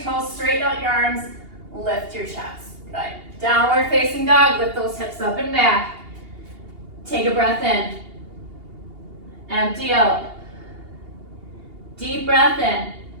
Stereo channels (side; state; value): left; late; 2.8 ms